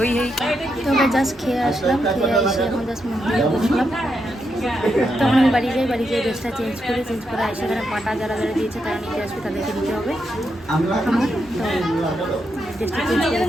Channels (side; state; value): both; normal; correlation 0.83